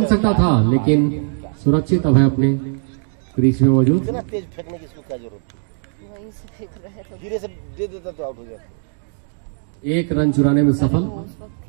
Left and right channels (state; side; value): silent; left; digital silence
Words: सकता था, लेकिन सुरक्षित अब है अपने क्रीज में मौजूद। तेज फेंकने की इसको क्या जरूरत, वहीं से फेंक रहे थे, धीरे से दे देता तो आउट हो जाता। 1 रन चुराने में सफल।